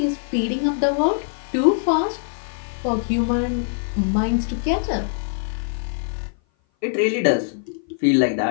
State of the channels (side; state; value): right; silent; 57 dB below the other